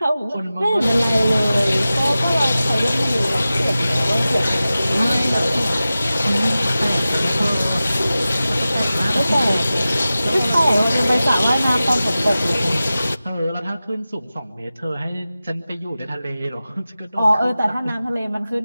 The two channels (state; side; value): inverted; both; correlation -0.95